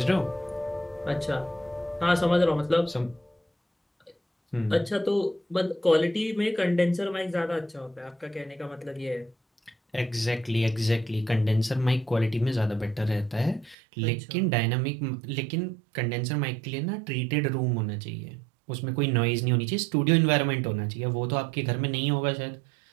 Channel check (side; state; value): left; drops out; at 13.8 s